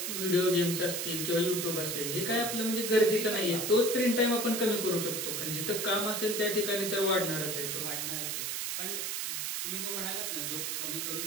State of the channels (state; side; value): noise; right; hiss, 2 dB below the sound